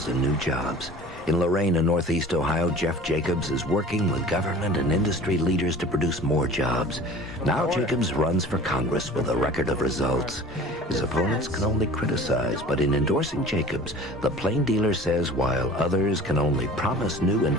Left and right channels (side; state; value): both; normal; correlation 0.43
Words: new jobs. In Lorain and Northeast Ohio, Jeff Jacobs is working with government and industry leaders to produce more jobs. Now Jacobs runs for Congress with a record of results. His opponents can only criticize, but in endorsing Jacobs, the plain dealer says while others can only promise new